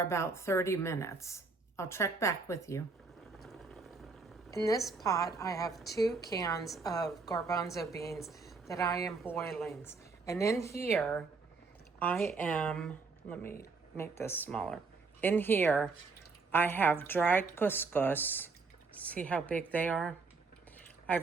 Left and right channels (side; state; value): left; quieter; 4.3 dB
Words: about 30 minutes. I'll check back with you. In this pot, I have 2 cans of garbanzo beans that I am boiling. And in here, I am, let me make this smaller. In here, I have dried couscous. See how big they are? I